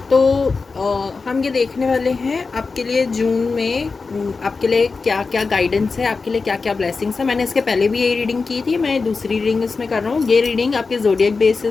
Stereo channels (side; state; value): right; quieter; 4.4 dB